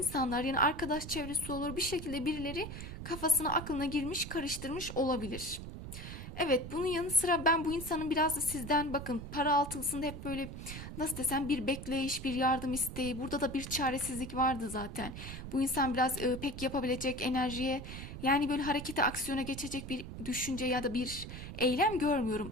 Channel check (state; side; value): noise; right; rumble, 9 dB below the sound